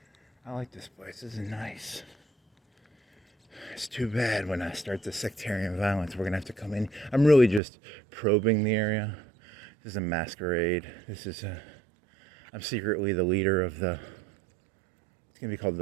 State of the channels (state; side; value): drops out; left; at 7.6 s